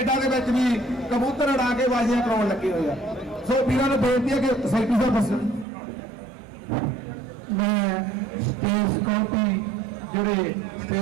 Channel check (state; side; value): drops out; left; at 5.7 s